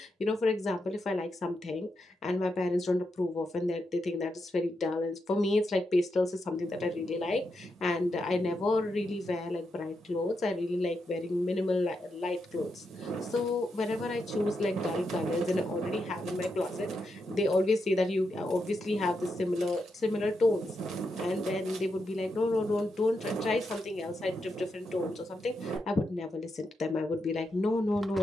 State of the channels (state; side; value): normal; both; correlation 0.84